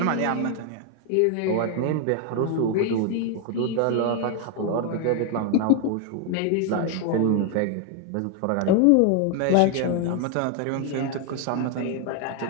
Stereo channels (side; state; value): both; different; correlation 0.01